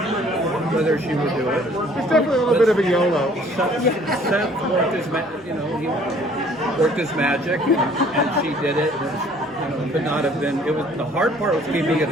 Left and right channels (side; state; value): both; normal; correlation 0.57